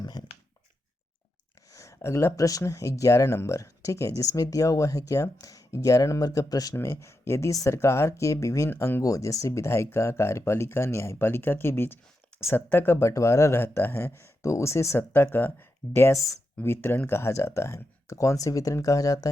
है। अगला प्रश्न 11 नंबर, ठीक है, जिसमें दिया हुआ है क्या, 11 नंबर का प्रश्न में, यदि सरकार के विभिन्न अंगों जैसे विधायिका, कार्यपालिका, न्यायपालिका के बीच सत्ता का बंटवारा रहता है तो उसे सत्ता का डैश वितरण कहा जाता है। तो कौन से वितरण कहा जाता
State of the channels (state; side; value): normal; both; correlation 0.86